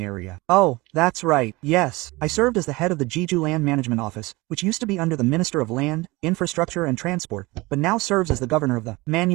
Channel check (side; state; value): left; quieter; 22.4 dB